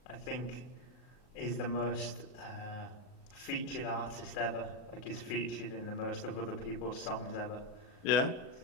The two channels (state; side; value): late; right; 39 ms